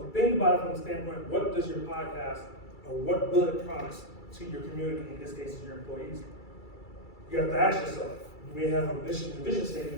think about it from the standpoint, what does your podcast, or what will it promise to your community, in this case, your employees? You have to ask yourself, you may have a mission and vision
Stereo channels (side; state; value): right; late; 2.3 ms